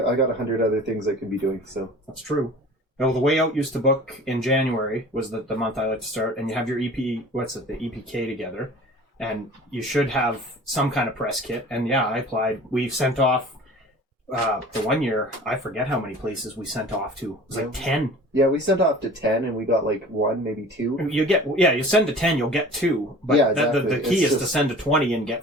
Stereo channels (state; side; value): normal; both; correlation 0.43